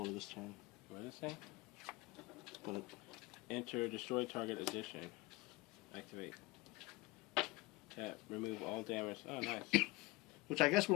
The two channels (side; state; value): right; quieter; 21.9 dB